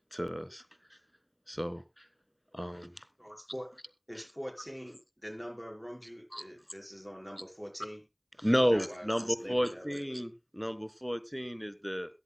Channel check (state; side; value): identical; both; correlation 1.00